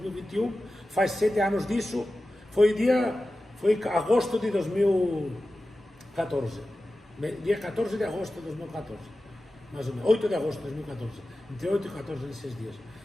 faz 7 anos disso, foi agosto de 2014, dia 14 de agosto de 2014, mais ou menos, 8 de agosto de 2014, entre 8 e 14 nesses dias.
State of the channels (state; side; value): normal; both; correlation 0.94